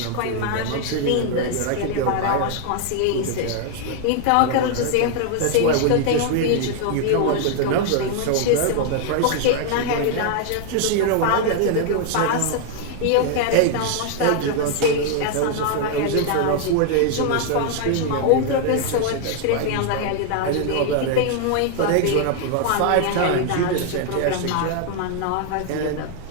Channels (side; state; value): both; different; correlation 0.00